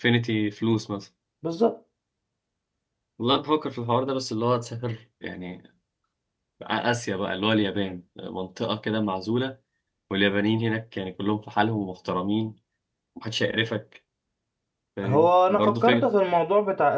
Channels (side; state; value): both; identical; correlation 1.00